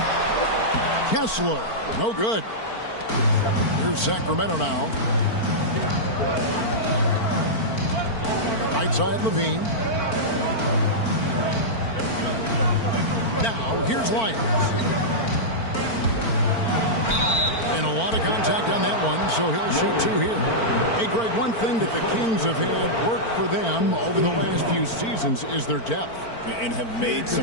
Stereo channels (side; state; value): right; late; 4.4 ms